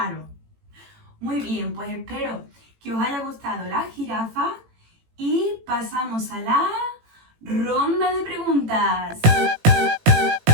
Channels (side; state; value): left; late; 18 ms